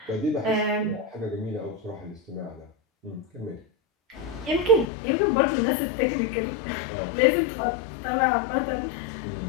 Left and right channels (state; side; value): drops out; right; at 4.9 s